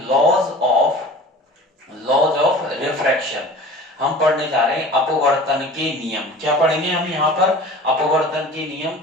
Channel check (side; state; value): both; normal; correlation 0.41